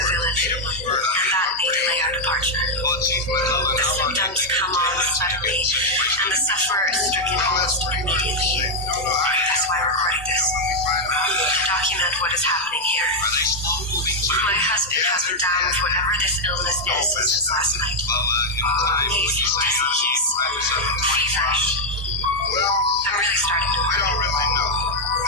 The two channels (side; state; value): both; normal; correlation 0.01